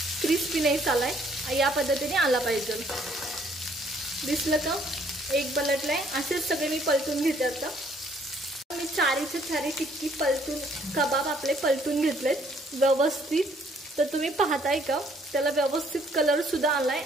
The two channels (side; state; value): both; normal; correlation 0.64